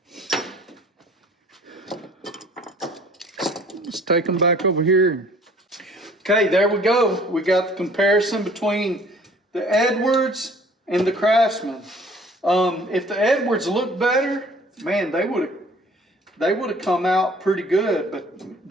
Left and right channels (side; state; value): both; normal; correlation 0.53